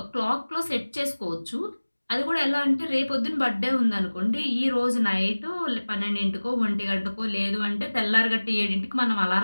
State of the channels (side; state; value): both; inverted; correlation -1.00